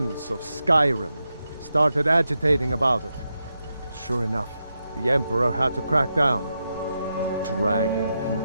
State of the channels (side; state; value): both; inverted; correlation -0.87